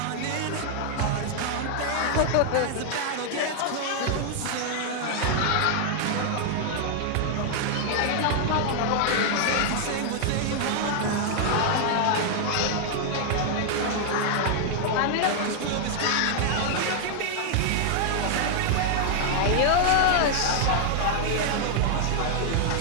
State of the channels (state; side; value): different; both; correlation 0.00